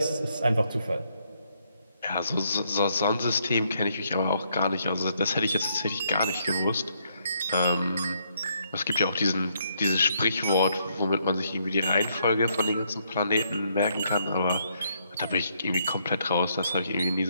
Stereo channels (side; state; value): both; inverted; correlation -0.73